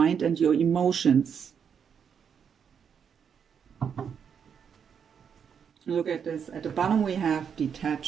and your emotions. Look at this. At the bottom we have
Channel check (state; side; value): quieter; left; 7.3 dB